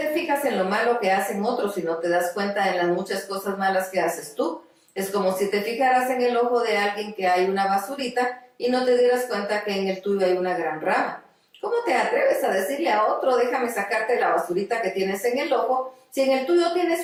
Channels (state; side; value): identical; both; correlation 1.00